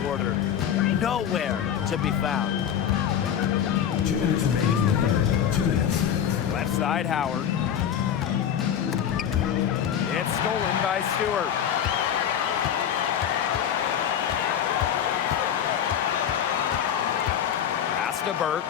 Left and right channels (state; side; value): quieter; right; 9.1 dB